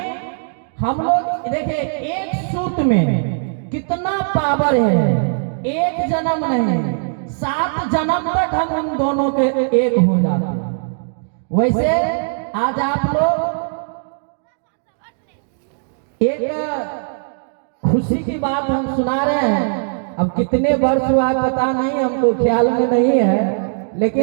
हम लोग देखिए, एक सूत्र में कितना पावर है। एक जन्म नहीं, 7 जन्म तक हम दोनों के एक हो जाते हैं। वैसे आज आप लोग एक खुशी की बात हम सुना रहे हैं। अब कितने वर्ष हुआ पता नहीं, हमको ख्याल में नहीं है,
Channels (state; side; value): silent; left; digital silence